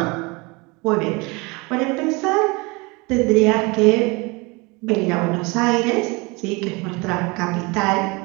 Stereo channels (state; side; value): quieter; left; 26.5 dB